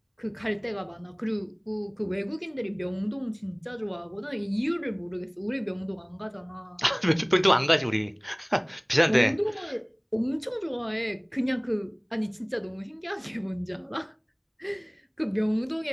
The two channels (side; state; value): both; identical; correlation 1.00